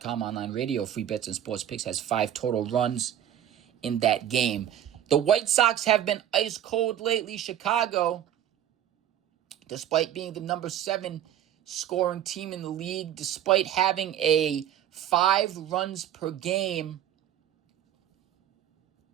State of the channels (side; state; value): left; quieter; 10.9 dB